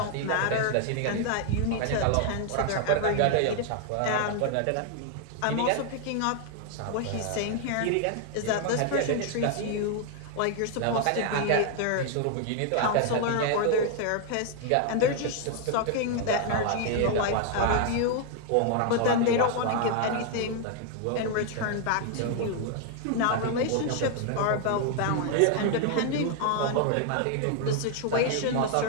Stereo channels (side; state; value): both; different; correlation 0.00